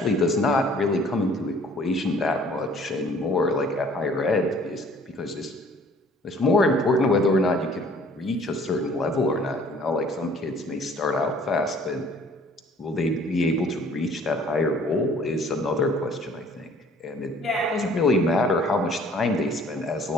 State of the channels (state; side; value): normal; both; correlation 0.54